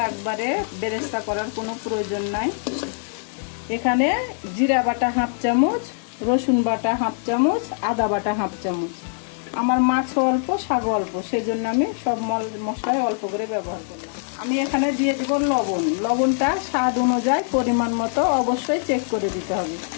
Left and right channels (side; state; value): right; silent; 58 dB below the other